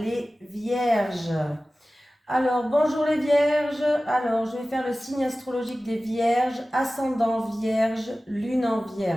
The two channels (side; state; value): both; normal; correlation 0.96